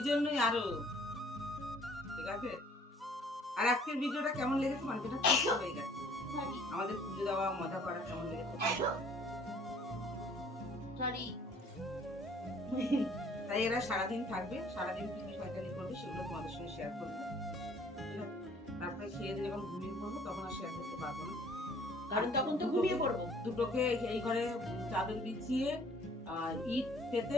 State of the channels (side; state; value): both; normal; correlation 0.56